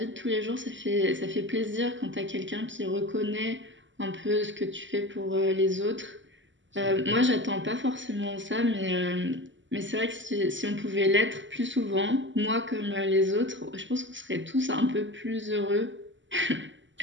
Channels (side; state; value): left; late; 0.55 ms